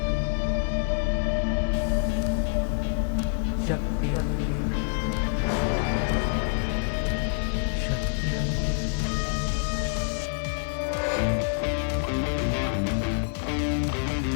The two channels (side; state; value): right; silent; 60 dB below the other